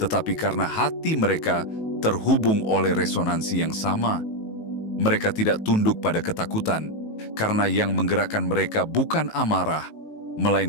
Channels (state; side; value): late; right; 19 ms